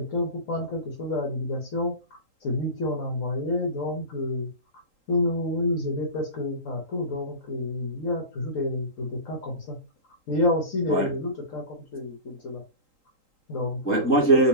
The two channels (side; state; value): right; late; 3.8 ms